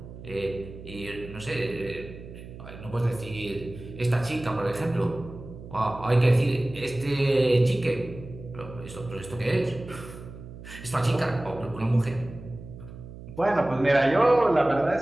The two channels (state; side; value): noise; right; hum, 14 dB below the sound